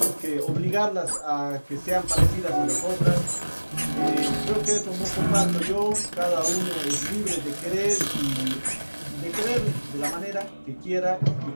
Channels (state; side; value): inverted; both; correlation -1.00